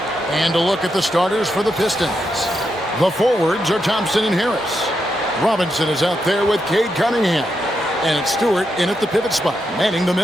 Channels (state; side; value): normal; both; correlation 0.83